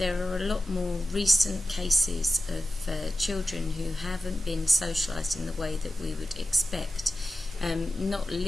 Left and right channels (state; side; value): normal; both; correlation 0.93